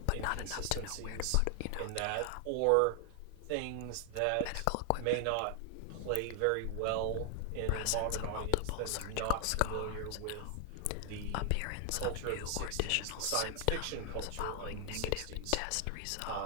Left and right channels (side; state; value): both; different; correlation 0.00